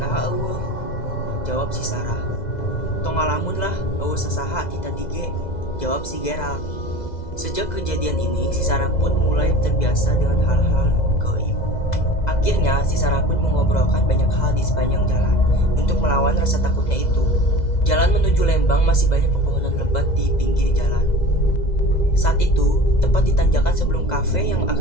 eueuh, jawab si Sarah. Tong ngalamun lah, eueuh sasaha kita dige, jawab si Gerald. Sejak kejadian ini, si Sarah pun mulai terbiasa dengan hal-hal gaib. Akhirnya, si Sarah pun mengobrolkan banyak hal di sepanjang jalan untuk melawan rasa takutnya itu. Jalan menuju Lembang masih banyak pepohonan lebat di pinggir jalan. Saat itu, tepat di tanjakan sebelum kafe yang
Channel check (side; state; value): right; late; 2.0 ms